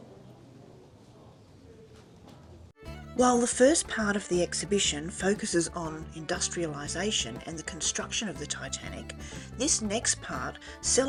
While the first part of the exhibition focuses on industrialisation and the construction of the Titanic, this next part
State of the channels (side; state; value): both; identical; correlation 1.00